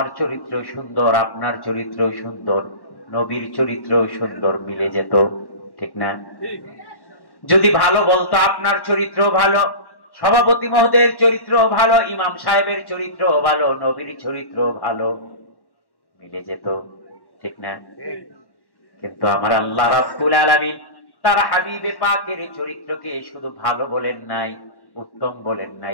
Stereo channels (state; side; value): late; right; 1.1 ms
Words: চরিত্র সুন্দর, আপনার চরিত্র সুন্দর, নবীর চরিত্র সুন্দর, মিলে যেত, ঠিক না? যদি ভালো বলতো, আপনার চরিত্র ভালো, সভাপতি মহোদয়ের চরিত্র ভালো, ইমাম সাহেবের চরিত্র ভালো, নবীর চরিত্র ভালো, মিলে যেত, ঠিক না? কিন্তু আমার আল্লাহ রাব্বুল আলামিন তার হাবিবে পাকের চরিত্রকে শুধু ভালো বলেন নাই, উত্তম বলেন